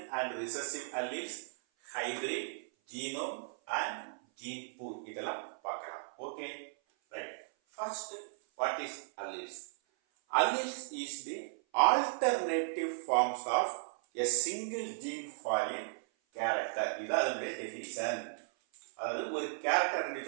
and recessive alleles, hybrid, genome and gene pool. இதெல்லாம் பார்க்கலாம். Okay, right. First, what is alleles? Alleles is the alternative forms of a single gene for a character. இது அதனுடைய definition. அதாவது ஒரு கேரக்டர்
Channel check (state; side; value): silent; left; 54 dB below the other